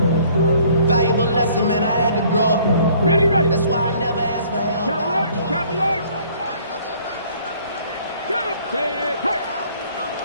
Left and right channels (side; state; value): both; inverted; correlation -0.58